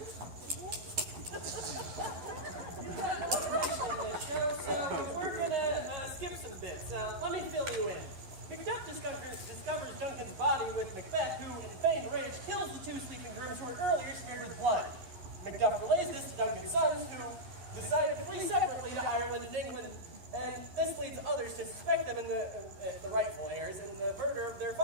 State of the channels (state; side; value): late; left; 11 ms